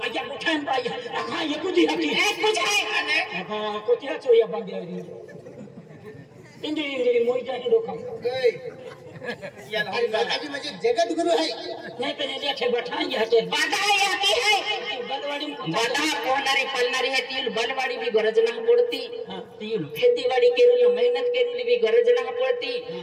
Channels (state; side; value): identical; both; correlation 1.00